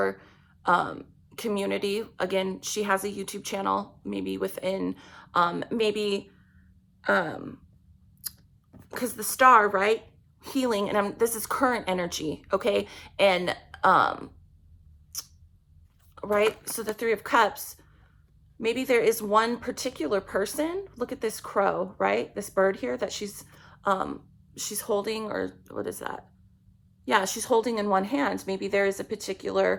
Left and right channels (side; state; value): both; identical; correlation 1.00